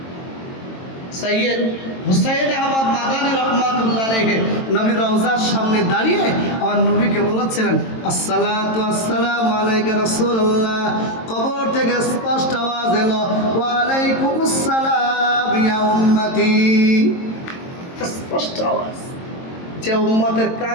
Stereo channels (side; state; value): right; late; 22 ms